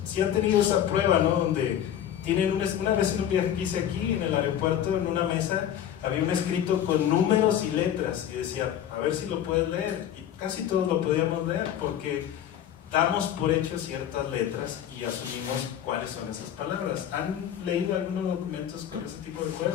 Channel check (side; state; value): right; quieter; 10.2 dB